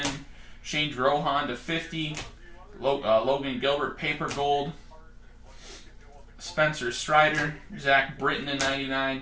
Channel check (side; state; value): both; identical; correlation 1.00